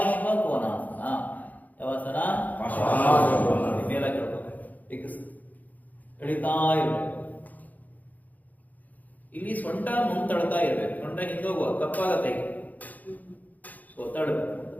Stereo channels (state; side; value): late; right; 0.080 ms